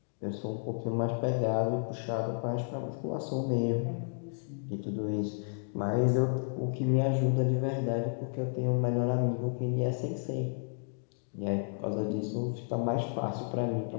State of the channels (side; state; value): right; silent; digital silence